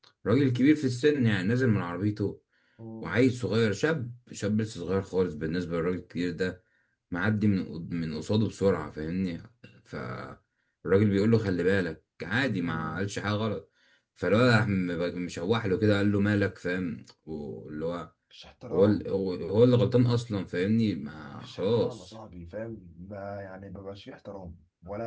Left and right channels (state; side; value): identical; both; correlation 1.00